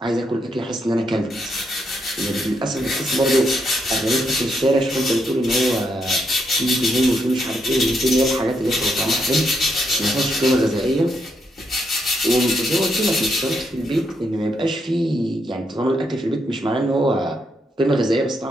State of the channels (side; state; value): both; normal; correlation 0.78